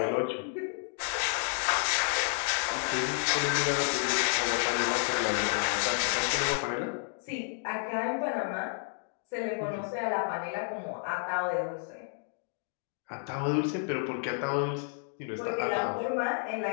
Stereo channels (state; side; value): silent; right; 57 dB below the other